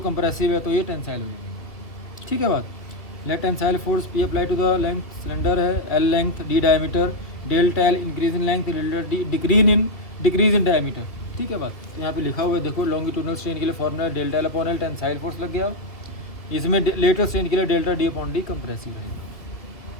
है तो ये टेंसाइल रहेगी, ठीक है बात। Let tensile force P apply to the length, cylinder है L length, D diameter, delta L increase in length, delta D decrease in diameter, ठीक है बात। तो यहाँ पे लिखा हुआ है, देखो लॉन्गिट्यूडनल स्ट्रेन के लिए formula delta L upon L, tensile force लग गया, इसमें लेटरल स्ट्रेन के लिए delta D upon D compressive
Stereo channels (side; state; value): right; late; 2.0 ms